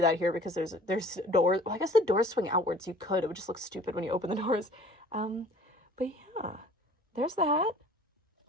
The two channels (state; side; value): normal; both; correlation 0.49